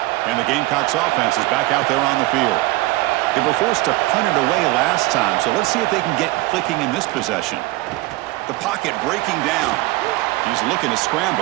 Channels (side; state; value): left; quieter; 19.8 dB